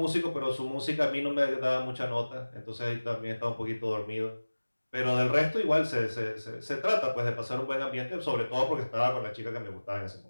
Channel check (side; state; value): both; inverted; correlation -1.00